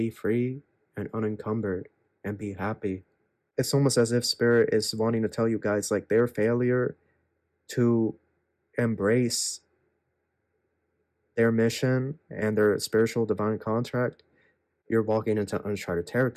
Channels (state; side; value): identical; both; correlation 1.00